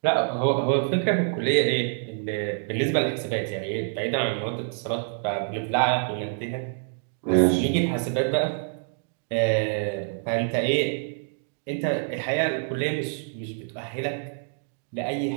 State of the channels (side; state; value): left; silent; digital silence